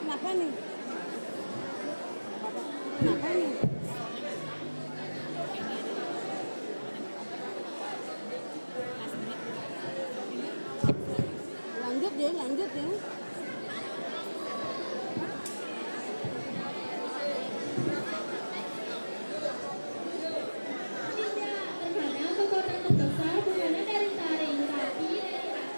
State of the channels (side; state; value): both; inverted; correlation -1.00